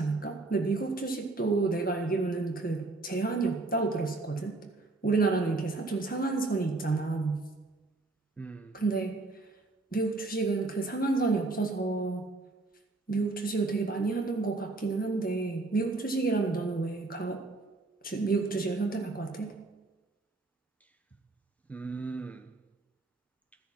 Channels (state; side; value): quieter; left; 3.3 dB